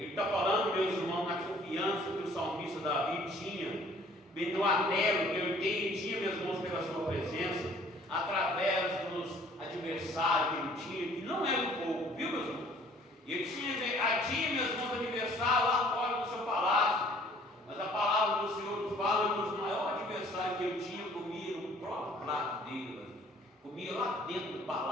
está falando, meus irmãos, na confiança que o salmista Davi tinha, no anelo que ele tinha, meus irmãos, pela sua presença, através dos adversários que ele tinha, que não era um pouco, viu, meus irmãos? Ele tinha, meus irmãos, adversário lá fora do seu palácio, mas a palavra do Senhor nos fala que o maior adversário que ele tinha comia no próprio prato dele, comia lá dentro do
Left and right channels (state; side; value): normal; both; correlation 0.56